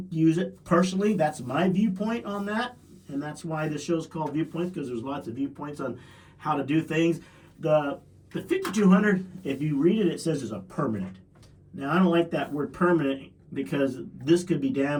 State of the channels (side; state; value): both; identical; correlation 1.00